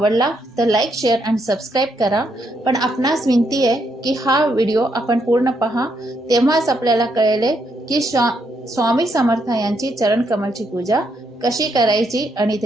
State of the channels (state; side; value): normal; both; correlation 0.77